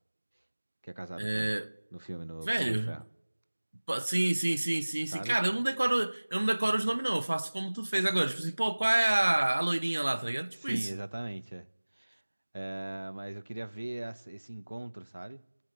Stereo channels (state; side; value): inverted; both; correlation -1.00